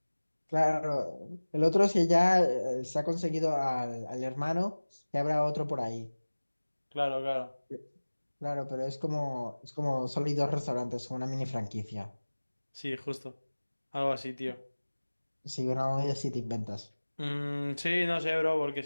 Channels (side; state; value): both; inverted; correlation -1.00